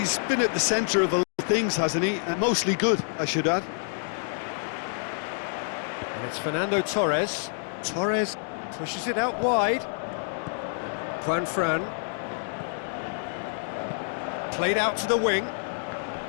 been at the centre of a lot of things, hasn't he? And mostly good, I should add. And it's Fernando Torres. Torres pushes it out wide. Juan Fran. Played out to the wing.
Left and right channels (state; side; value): silent; right; digital silence